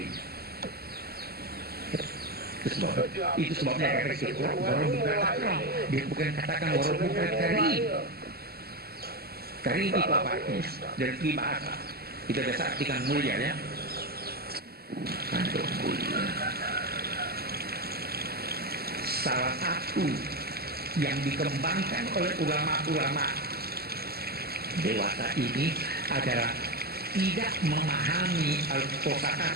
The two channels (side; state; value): left; late; 0.46 ms